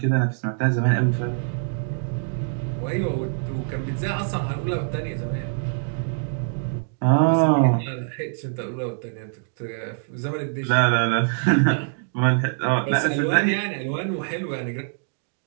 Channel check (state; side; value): silent; left; digital silence